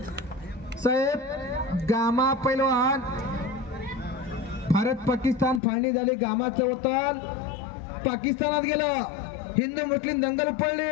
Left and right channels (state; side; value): drops out; right; at 5.6 s